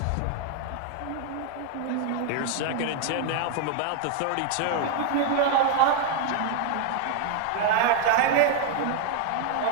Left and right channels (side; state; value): both; different; correlation 0.00